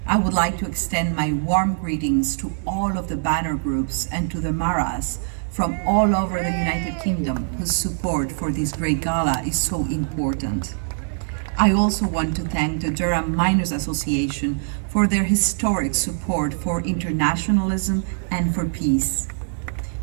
I would like to extend my warm greetings to all of the banner groups and to the Maras from all over the United Kingdom whose support for this great gala is so important. I also want to thank the Durham Miners Association for their historic support for internationalism and for peace.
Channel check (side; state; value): left; silent; 64 dB below the other